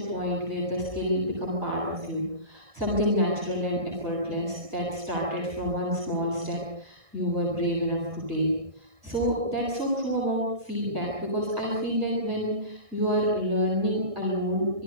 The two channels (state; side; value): late; left; 1.7 ms